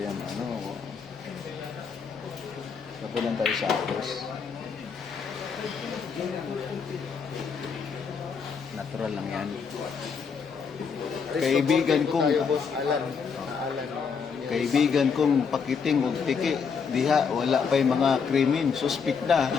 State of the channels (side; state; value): right; quieter; 6.0 dB